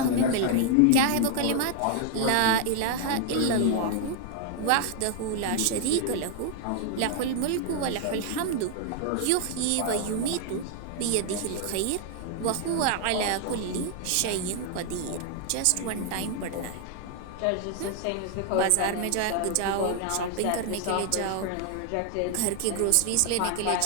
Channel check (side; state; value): both; different; correlation 0.00